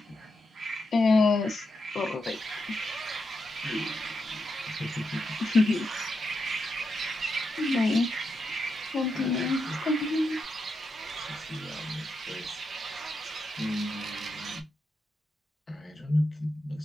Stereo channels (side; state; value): both; normal; correlation 0.85